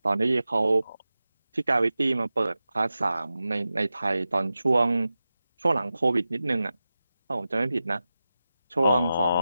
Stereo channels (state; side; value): inverted; both; correlation -0.93